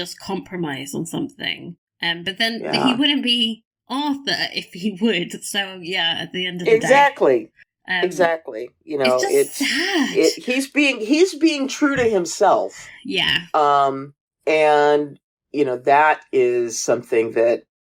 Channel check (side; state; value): both; identical; correlation 1.00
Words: compromise on something. But then he wouldn't be Arthur if he would. So yeah, at the end of the day, exactly. You know, it's sad. He's being true to himself. Yeah. And you know, that is something that,